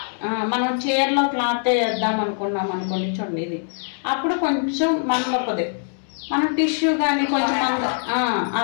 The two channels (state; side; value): silent; right; 64 dB below the other